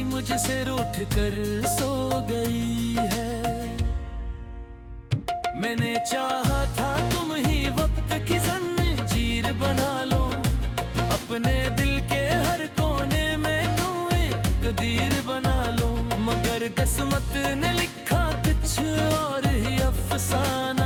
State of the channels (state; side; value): identical; both; correlation 1.00